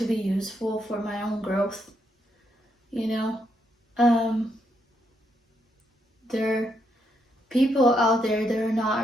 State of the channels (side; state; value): both; normal; correlation 0.78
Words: be useful for my own growth. There are people out there that are